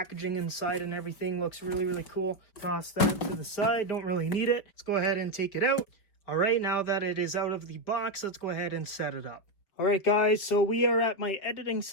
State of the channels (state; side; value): late; right; 4.9 ms